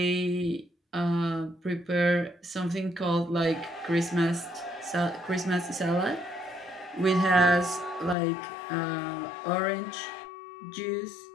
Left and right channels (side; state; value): right; drops out; at 8.2 s